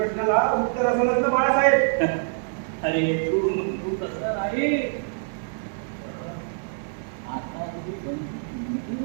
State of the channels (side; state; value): left; silent; digital silence